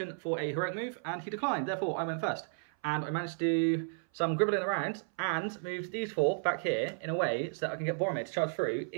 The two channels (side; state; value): left; silent; 56 dB below the other